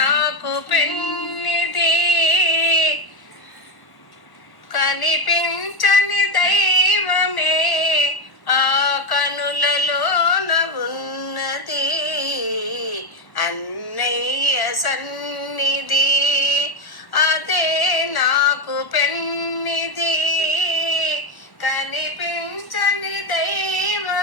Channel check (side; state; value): right; late; 1.1 ms